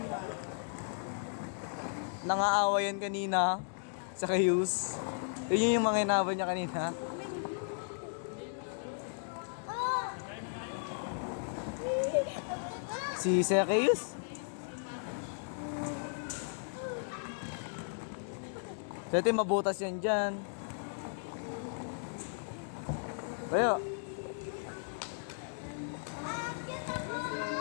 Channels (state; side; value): silent; right; digital silence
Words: Nangaawa yan kanina sa Kayus. Yun yung mga inaabot niya kanina. Si Zacchaeus. Dati mabutas yan dyan. Tayo.